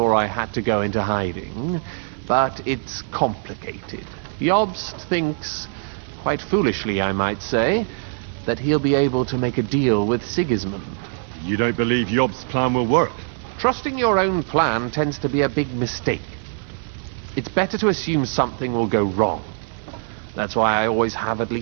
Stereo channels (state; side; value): silent; left; 61 dB below the other